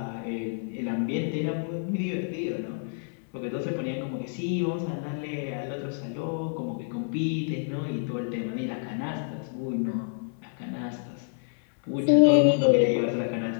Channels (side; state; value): right; silent; 56 dB below the other